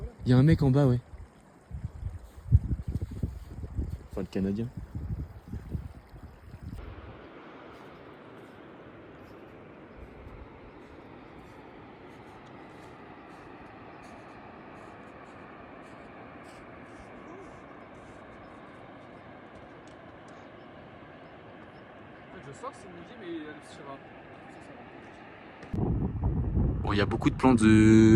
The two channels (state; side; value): identical; both; correlation 1.00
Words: Il y a un mec en bas, ouais. Enfin, le Canadien. Je sors, c'est midi, mais elle sera. Bon, il y a beaucoup de plans